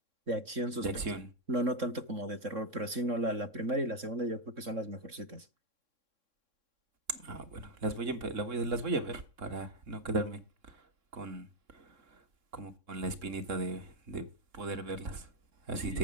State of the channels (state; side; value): late; left; 3.6 ms